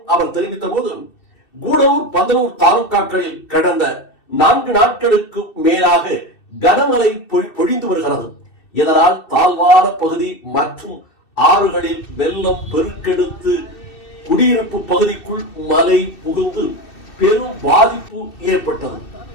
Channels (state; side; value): late; right; 2.7 ms